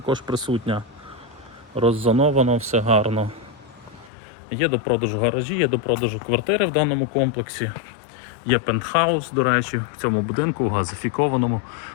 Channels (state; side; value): drops out; right; at 4.1 s